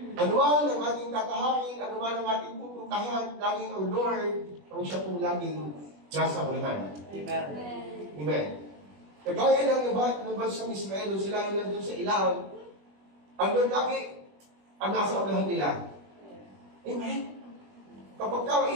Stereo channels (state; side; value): late; left; 21 ms